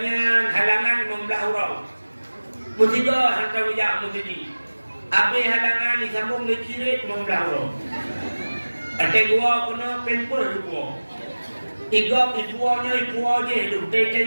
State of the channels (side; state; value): both; inverted; correlation -1.00